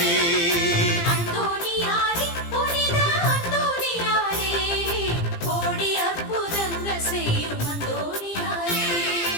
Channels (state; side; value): late; right; 17 ms